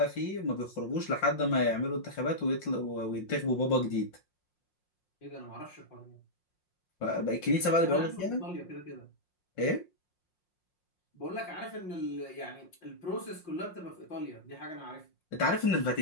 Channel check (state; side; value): late; right; 5.6 ms